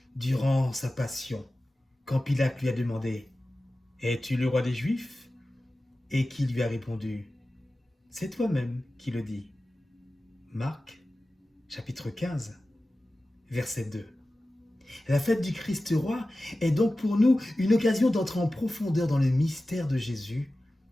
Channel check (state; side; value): normal; both; correlation 0.95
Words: durant sa passion, quand Pilate lui a demandé: es-tu le roi des Juifs? Et qui lui a répondu: c'est toi-même qui le dis. Marc, chapitre 15, verset 2. La fête du Christ roi est donc pour nous une occasion d'entrer en profondeur dans le mystère de Jésus,